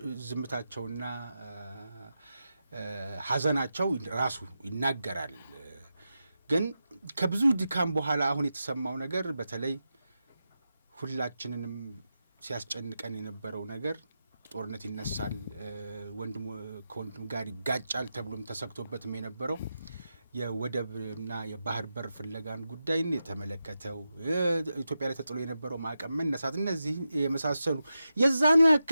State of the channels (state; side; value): inverted; both; correlation -0.90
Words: ዝምታቸውና ሐዘናቸው ራሱ ይናገራል። ግን ከብዙ ድካም በኋላ አሁን የተሰማው ነገር በተለይ ሁላችንንም ሲያስጨንቀን የነበረው ነገር ጦርነት ይነሳል፣ ወንድም ከወንድም ጋር ይጋጫል ተብሎም ተሰክቶበትም የነበረው የወደብና የባህር በር ፍለጋን ጉዳይን የተመለከተው ኢትዮጵያ ላይ ተጥሎ የነበረው ማዕቀብ መነሳት፣ እነዚህ የመሳሰሉ የዛኑ